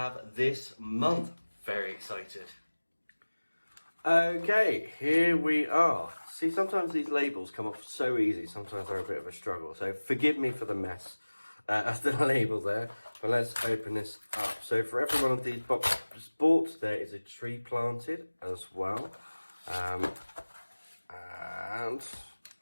this month. Very excited. Okay, here we are. See, sometimes these labels come off so easy, sometimes they're a bit of a struggle. So forgive me for the mess of the label there, but let's open this up. So for every one of these boxes bought, there is a tree planted as well.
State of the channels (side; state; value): both; inverted; correlation -1.00